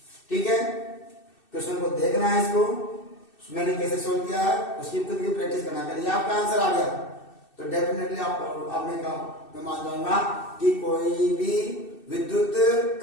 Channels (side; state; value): right; late; 2.6 ms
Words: ठीक है। क्वेश्चन को देखना है, इसको मैंने कैसे सोल्व किया है उसकी खुद की प्रैक्टिस करना। करिए आपका आंसर आ गया तो डेफिनेटली आपने कहा, मैं मान जाऊंगा कि कोई भी विद्युत